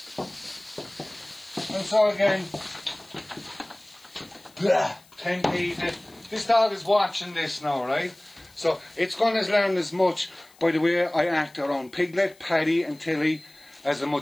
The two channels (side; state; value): left; noise; hiss, 28 dB below the sound